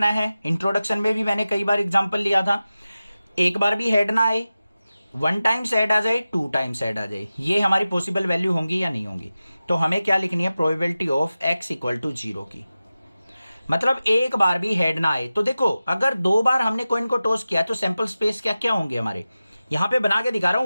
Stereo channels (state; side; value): inverted; both; correlation -0.95